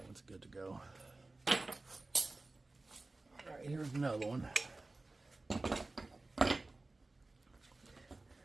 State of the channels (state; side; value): quieter; left; 3.2 dB